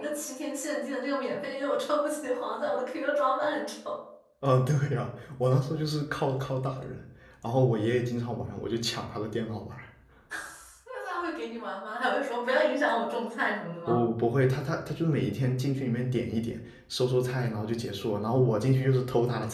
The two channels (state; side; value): identical; both; correlation 1.00